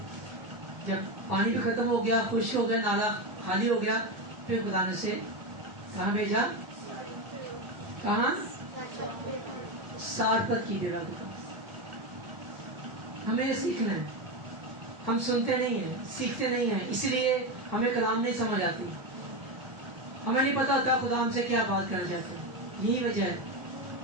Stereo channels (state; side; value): late; left; 1.2 ms